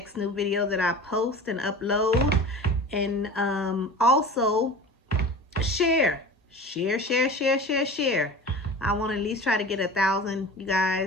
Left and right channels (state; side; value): normal; both; correlation 0.36